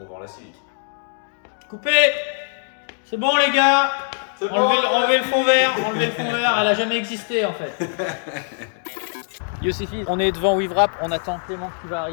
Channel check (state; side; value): silent; right; digital silence